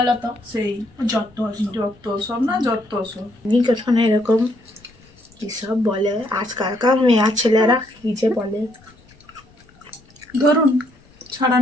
তো? সেই যত যত সব না, যত সব নিকেতনে এরকম কি সব বলে আজকালকার মেয়ে ছেলেরা, কি যে বলে। ধরুন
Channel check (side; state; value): left; noise; rumble, 28 dB below the sound